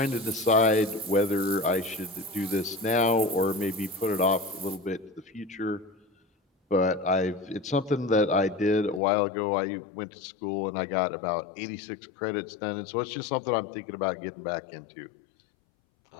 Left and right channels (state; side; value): drops out; right; at 9.0 s